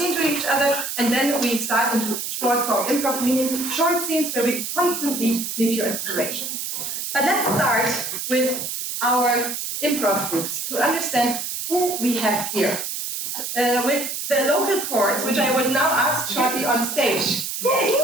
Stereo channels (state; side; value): noise; right; hiss, 4 dB below the sound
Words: to each other, and then we start into short form improv, meaning short scenes where we constantly need your inspiration. But let's start with our improv groups to understand who we have here. With the local chords, which I would now ask shortly on stage. Yay!